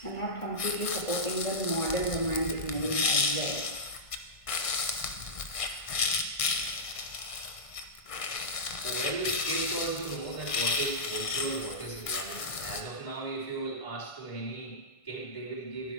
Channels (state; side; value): late; right; 1.5 ms